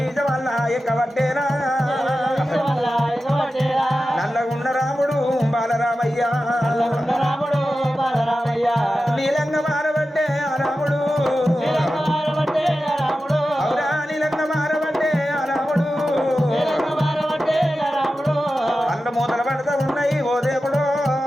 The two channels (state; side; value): normal; both; correlation 0.93